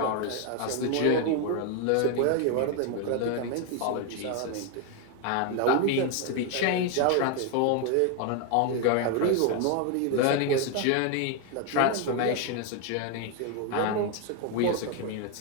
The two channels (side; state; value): both; different; correlation 0.01